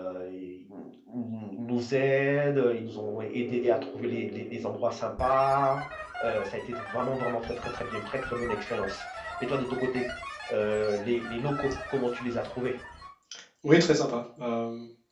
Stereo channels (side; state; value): both; identical; correlation 1.00